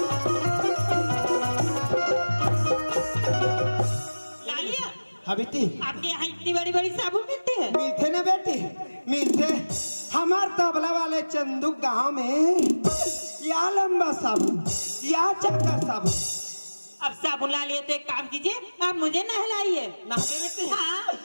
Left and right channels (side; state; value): both; inverted; correlation -1.00